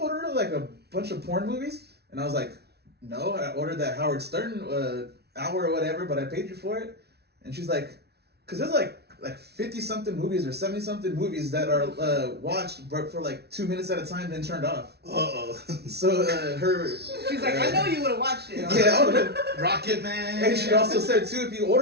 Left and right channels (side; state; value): left; late; 0.48 ms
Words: like a bunch of porn movies? And I was like, no, I ordered that Howard Stern hour or whatever, but I paid you for it. And she's like, because there's like 50 something movies or 70 something movies that are watched but for like 2 minutes at a time then turned off. So She's like, I know you would have watched it. yeah, Rocket Man. and she also said too, if you